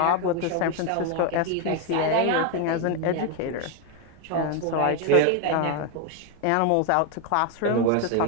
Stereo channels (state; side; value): different; both; correlation 0.01